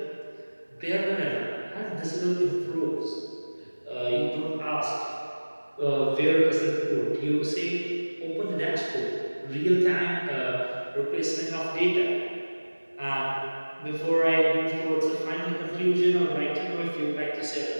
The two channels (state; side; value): inverted; both; correlation -1.00